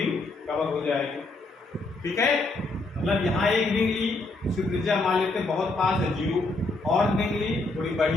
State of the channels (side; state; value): right; quieter; 3.2 dB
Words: कवर हो जाएगी। ठीक है, मतलब यहाँ एक रिंग ली, उसकी त्रिज्या मान लेते हैं बहुत पास है 0, और रिंग ली थोड़ी